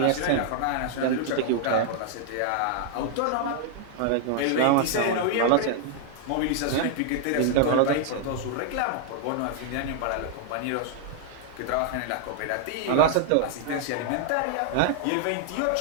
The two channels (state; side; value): different; both; correlation 0.00